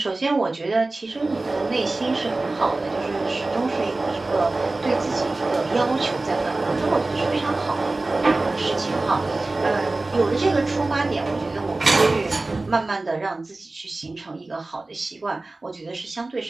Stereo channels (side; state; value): left; quieter; 3.1 dB